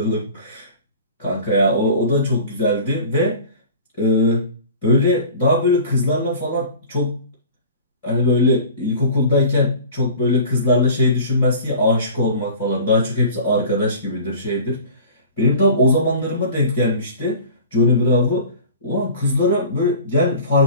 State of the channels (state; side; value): inverted; both; correlation -0.41